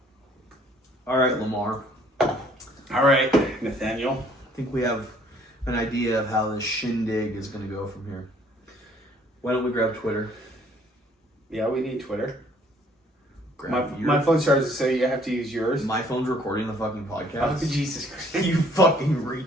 All right, Lamar. All right, Nathaniel. I think we have an idea of how this shindig is going to go from here. Why don't we grab Twitter? Yeah, we need Twitter. Grab My phone charges, so you have to use yours. My phone's recording the fucking podcast. Oh, Jesus Christ. You fucking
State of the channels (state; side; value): normal; both; correlation 0.61